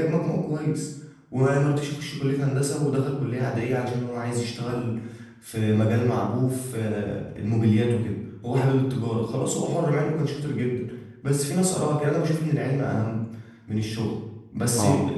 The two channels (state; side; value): identical; both; correlation 1.00